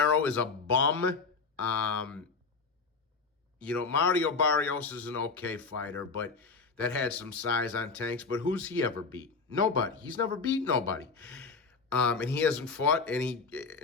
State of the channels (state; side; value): quieter; right; 4.7 dB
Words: is a bum. Mario Barrios is an okay fighter, but that had some size on Tank's. But who's he ever beat? Nobody. He's never beat nobody. And he hasn't fought.